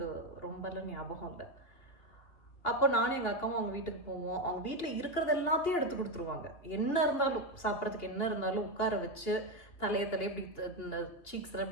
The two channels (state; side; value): late; right; 2.8 ms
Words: ரொம்பலாம் ஞாபகம் இல்லை. அப்போ நானும் எங்கள் அக்காவும் அவங்க வீட்டுக்கு போவோம். அவங்க வீட்டில் இருக்கிறது எல்லாத்தையும் எடுத்து கொடுத்துருவாங்க. என்ன இருந்தாலும் சாப்பிட்றதுக்கு என்ன இருந்தாலும் உட்கார வச்சு தலையை இப்படி இந்த சீக்ஸ் எல்லாம்